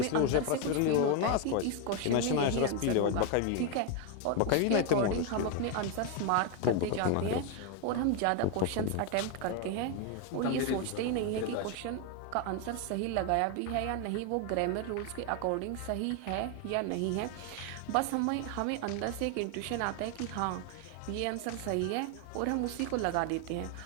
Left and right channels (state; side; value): different; both; correlation 0.01